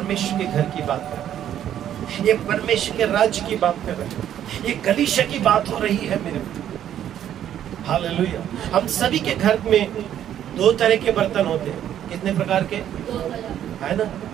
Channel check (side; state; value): left; quieter; 10.7 dB